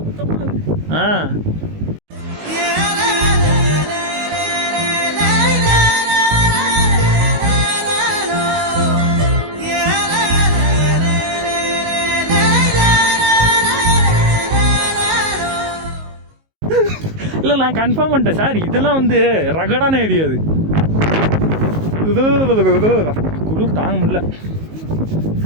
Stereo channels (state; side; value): late; left; 19 ms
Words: இருக்கு. இல்லை நான் கன்ஃபார்ம் பண்ணிட்டேன் சார், இதெல்லாம் வந்து ரகடான ஏரியா. அது குளிர் தாங்க முடியல.